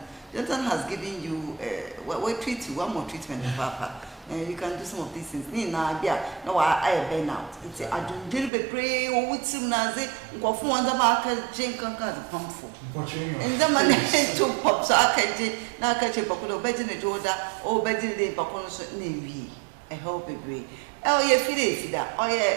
Jonathan has given you we treat you one more treatment papa. And you can do some of these things. No, I burn out. It's a do be pray or with some nazi, go for one the market, jink and pump for. And the man to pop so I can now catch a pocket bed in the Jordan or bed in the Paconos Navy. I hope it be. Oh, yeah, feed that. Oh,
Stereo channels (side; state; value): left; drops out; at 8.5 s